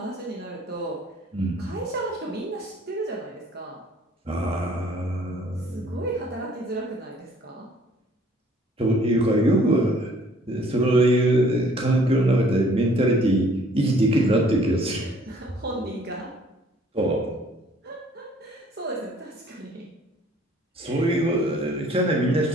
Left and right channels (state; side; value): normal; both; correlation 0.58